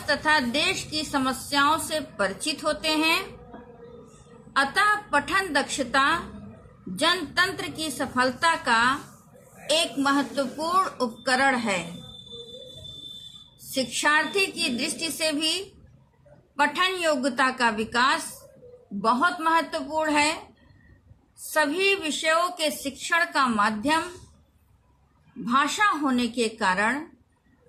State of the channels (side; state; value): both; identical; correlation 1.00